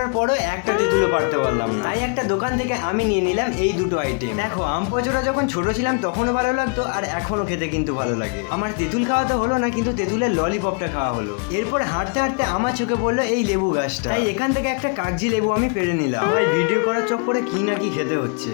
পরও একটা তেঁতুলও পারতে পারলাম না। তাই একটা দোকান থেকে আমি নিয়ে নিলাম এই দুটো আইটেম। দেখো আম পচড়া যখন ছোট ছিলাম তখনও ভালো লাগতো, আর এখনো খেতে কিন্তু ভালো লাগে। আমার তেঁতুল খাওয়া তো হলো না, কিন্তু তেঁতুলের ললিপপটা খাওয়া হলো। এরপর হাঁটতে হাঁটতে আমার চোখে পড়লো এই লেবু গাছটা, তাই এখান থেকে একটা কাগজি লেবু আমি পেরে নিলাম। ভাই ভিডিও করার চক্করে কি না কি খেতে হচ্ছে।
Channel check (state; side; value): quieter; right; 37.1 dB